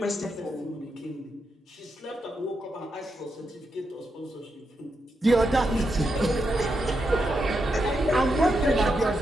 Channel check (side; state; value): both; normal; correlation 0.84